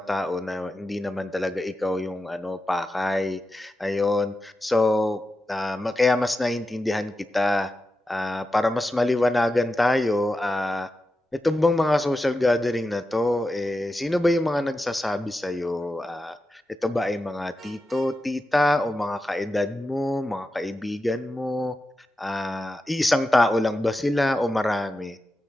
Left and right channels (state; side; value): normal; both; correlation 0.90